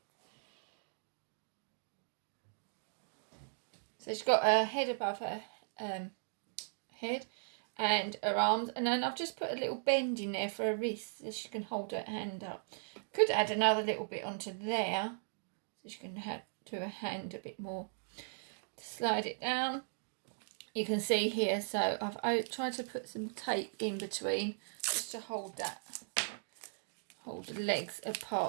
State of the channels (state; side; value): silent; left; digital silence